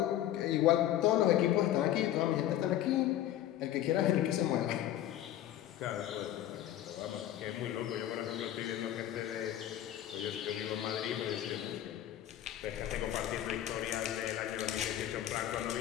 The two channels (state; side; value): quieter; right; 12.3 dB